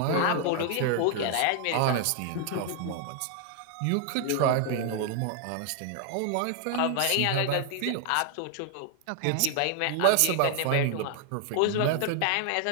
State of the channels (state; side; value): different; both; correlation 0.00